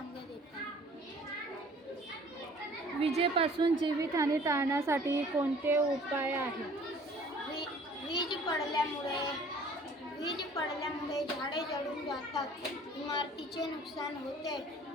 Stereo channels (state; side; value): normal; both; correlation 0.52